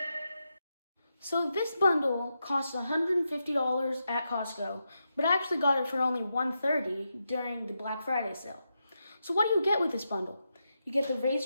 So this bundle costs $150 at Costco, but I actually got it for only $130 during the Black Friday sale. So what do you get with this bundle? You get the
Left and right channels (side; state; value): both; inverted; correlation -0.86